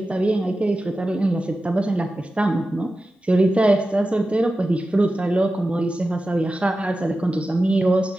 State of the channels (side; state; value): both; normal; correlation 0.93